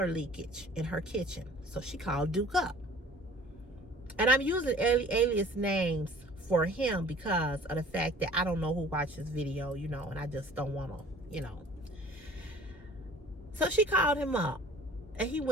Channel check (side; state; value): both; normal; correlation 0.48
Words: leakage in her kitchen, so she called Duke up. And I'm using alias names for him because of the fact that I don't know who watched this video, you know, and I just don't want to, you know. So she called him up and he